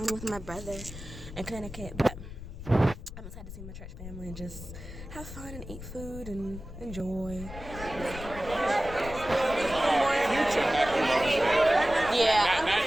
with my brother in Connecticut, but I'm excited to see my church family and just have fun and eat food and enjoy. Yeah, I'm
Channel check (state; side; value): noise; left; rumble, 12 dB below the sound